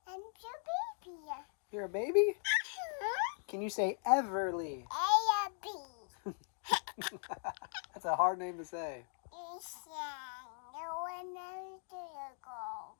I'm your baby. You're a baby? Can you say Everly? A, B. That's a hard name to say. No one knows to go.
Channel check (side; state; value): right; silent; 52 dB below the other